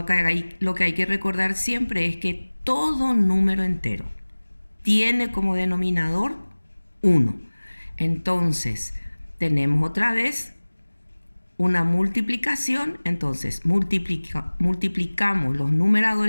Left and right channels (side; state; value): both; inverted; correlation -1.00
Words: que hay que recordar siempre es que todo número entero tiene como denominador 1. Entonces, tenemos otra vez una multiplicación. Entonces, multiplicamos los